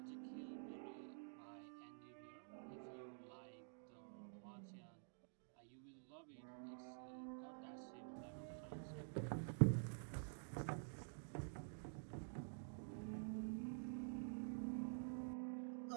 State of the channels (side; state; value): left; silent; digital silence